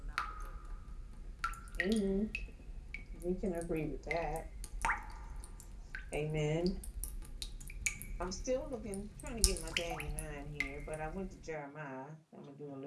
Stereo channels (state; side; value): identical; both; correlation 1.00